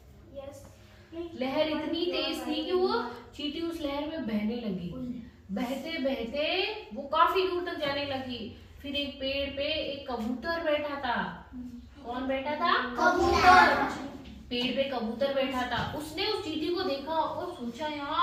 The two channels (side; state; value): both; identical; correlation 1.00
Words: लहर इतनी तेज थी कि वो चींटी उस लहर में बहने लगी। बहते बहते वो काफी दूर तक जाने लगी। फिर एक पेड़ पे एक कबूतर बैठा था। कौन बैठा था? कबूतर। पेड़ पे कबूतर बैठा था। उसने उस चींटी को देखा और सोचा